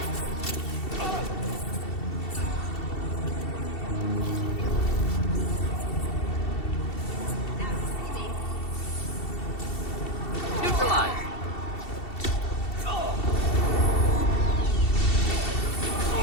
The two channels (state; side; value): late; right; 2.7 ms